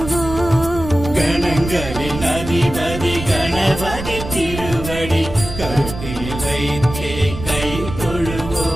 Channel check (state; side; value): noise; right; rumble, 9 dB below the sound